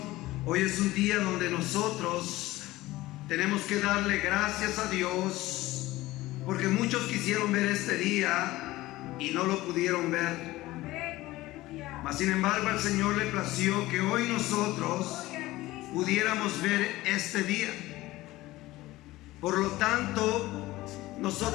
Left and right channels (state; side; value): quieter; right; 17.9 dB